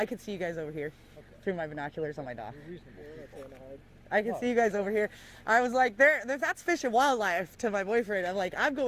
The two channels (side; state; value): both; identical; correlation 1.00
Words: could see you guys over here through my binoculars on my dock. I can see you guys over here. I was like, that's Fish and Wildlife to my boyfriend. I'm like, I'm